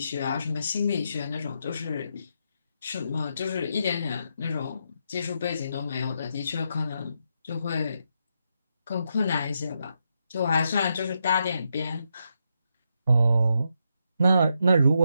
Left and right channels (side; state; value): both; inverted; correlation -0.81